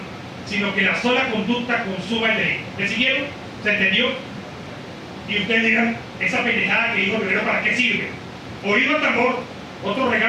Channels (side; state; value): both; identical; correlation 1.00